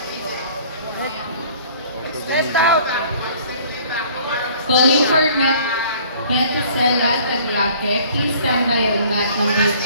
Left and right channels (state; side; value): inverted; both; correlation -0.52